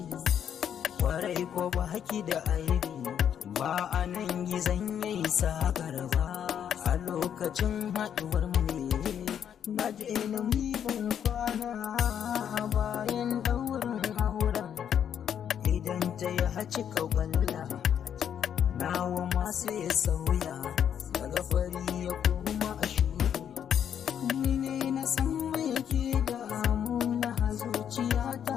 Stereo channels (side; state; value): right; quieter; 8.9 dB